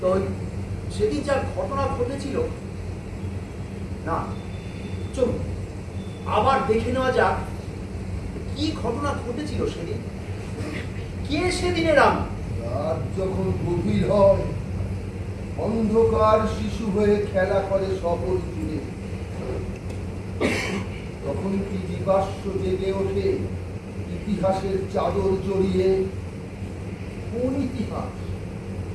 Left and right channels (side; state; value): both; identical; correlation 1.00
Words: তো সেদিন যা ঘটনা ঘটেছিল, না চলুন আবার দেখে নেওয়া যাক কি ঘটনা ঘটেছিল সেদিন। কে সেদিনের আমি? রাত যখন গভীর হয়, অন্ধকার শিশু হয়ে খেলা করে শহর জুড়ে, তখন কি জীবাশ্ম জেগে ওঠে ইতিহাসের চাদর জড়িয়ে। কোন ইতিহাস?